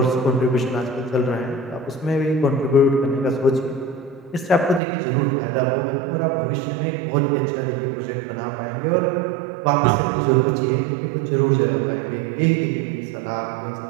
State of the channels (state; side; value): drops out; left; at 4.8 s